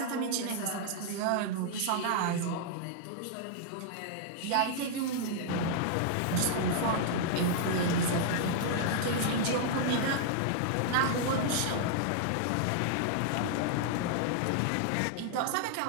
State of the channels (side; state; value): both; different; correlation -0.01